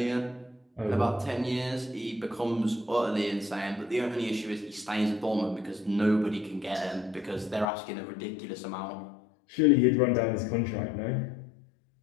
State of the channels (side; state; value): right; drops out; at 7.7 s